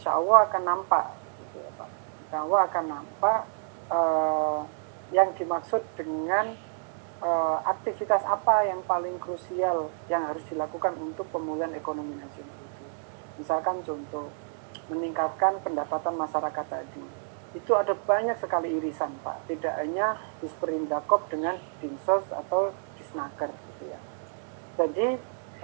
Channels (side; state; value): left; silent; digital silence